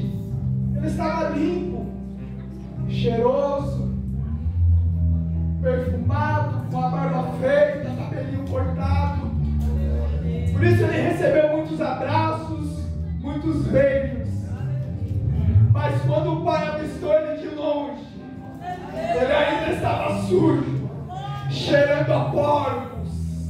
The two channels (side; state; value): both; identical; correlation 1.00